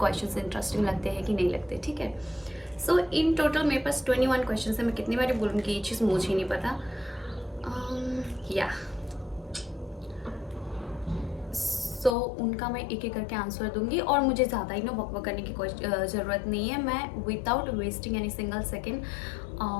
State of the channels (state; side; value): drops out; right; at 12.2 s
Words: इंटरेस्टिंग लगते हैं कि नहीं लगते. ठीक है, सो इन टोटल मेरे पास 21 क्वेश्चन है. मैं कितनी बार बोलूँगी ये चीज़ मुझे ही नहीं पता. या सो उनका मैं एक एक करके आंसर दूंगी और मुझे ज़्यादा ही ना वक करने की कोई ज़रूरत नहीं है. मैं without wasting any single second